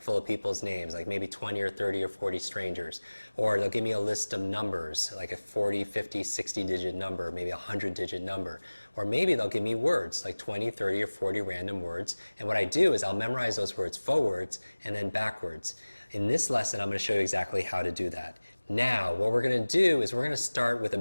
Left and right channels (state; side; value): inverted; both; correlation -1.00